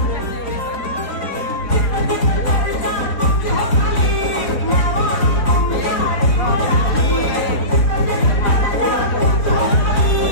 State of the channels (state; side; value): late; right; 4.0 ms